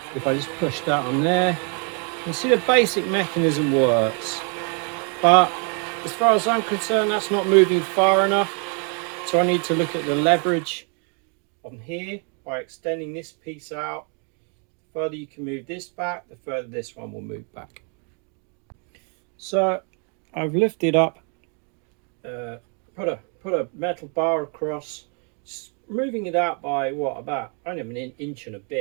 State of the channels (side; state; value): left; quieter; 38.5 dB